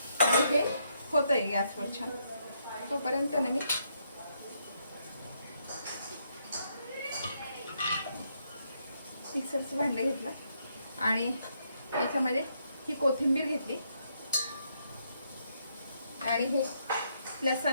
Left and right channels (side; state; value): both; inverted; correlation -0.76